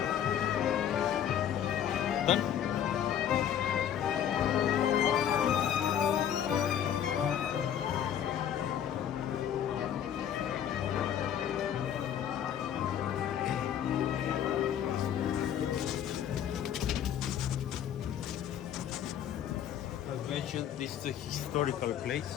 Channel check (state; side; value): quieter; right; 9.7 dB